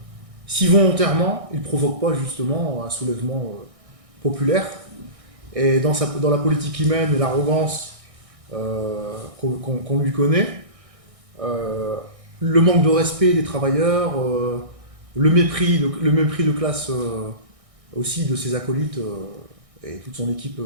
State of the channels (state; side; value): late; left; 1.6 ms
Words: volontairement il ne provoque pas justement un soulèvement populaire. Et dans la politique qu'il mène et l'arrogance qu'on lui connaît, le manque de respect des travailleurs, le mépris de classe aussi de ses acolytes et toute son équipe